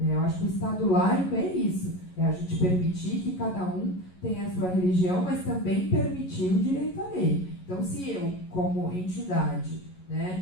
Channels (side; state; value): right; late; 11 ms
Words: Eu acho que o Estado laico é isso, é a gente permitir que cada um tenha a sua religião, mas também permitir o direito à lei. Então, se eu, como entidade,